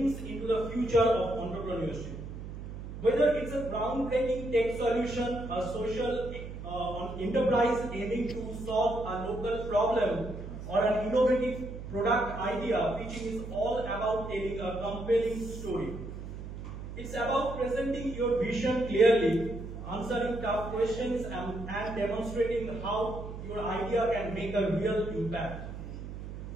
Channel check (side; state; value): right; noise; hum, 9 dB below the sound